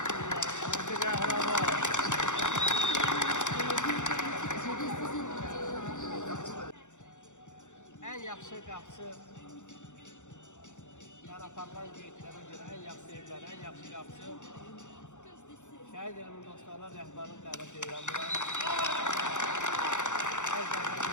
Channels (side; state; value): right; late; 0.85 ms